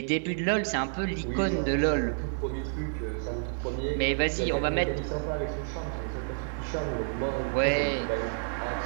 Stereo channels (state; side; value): silent; left; 58 dB below the other